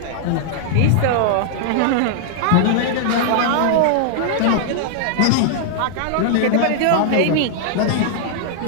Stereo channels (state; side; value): different; both; correlation -0.01